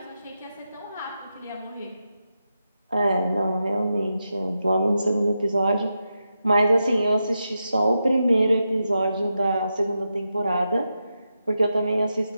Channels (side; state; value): both; inverted; correlation -0.88